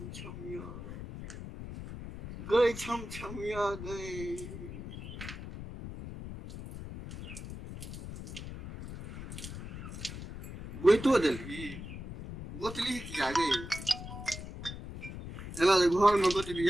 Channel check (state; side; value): noise; left; rumble, 10 dB below the sound